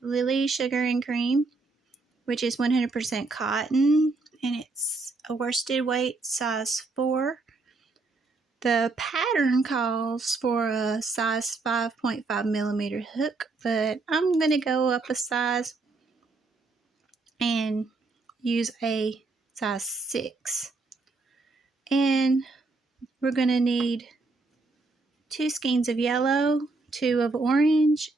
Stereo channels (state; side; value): quieter; left; 3.6 dB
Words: Sugar and Cream, which is 100% cotton, and it's a worsted weight size 4. The pattern calls for a size 5.5 millimeter hook, but I'm going to go up a size and use a size 6. And we're going to need 2 skeins of yellow, 2 of orange,